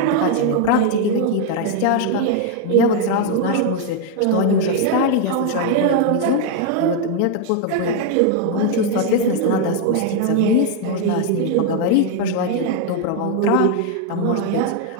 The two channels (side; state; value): both; different; correlation 0.01